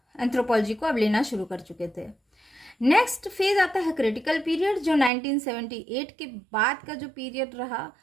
एंथ्रोपोलॉजी को अब लेना शुरू कर चुके थे। नेक्स्ट फेज आता है क्रिटिकल पीरियड, जो 1978 के बाद का जो पीरियड रहा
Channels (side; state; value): left; drops out; at 5.1 s